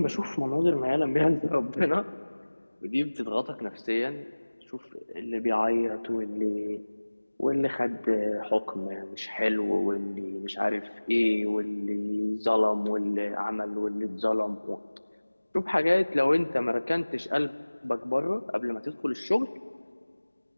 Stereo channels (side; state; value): both; inverted; correlation -1.00